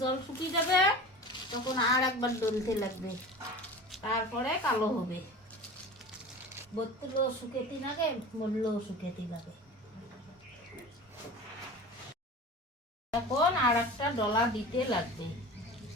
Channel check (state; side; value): normal; both; correlation 0.35